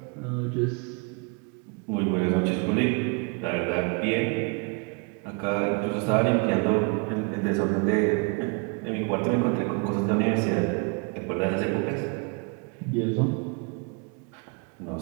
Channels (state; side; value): quieter; left; 32.8 dB